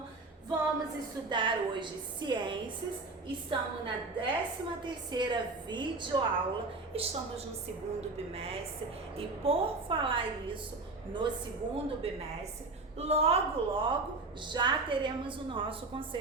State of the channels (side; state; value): left; quieter; 3.4 dB